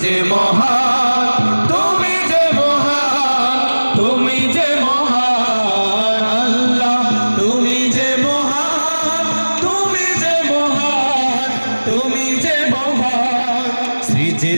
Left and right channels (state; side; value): inverted; both; correlation -1.00